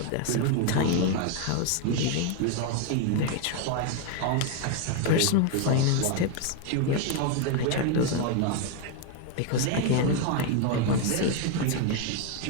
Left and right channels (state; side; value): different; both; correlation 0.01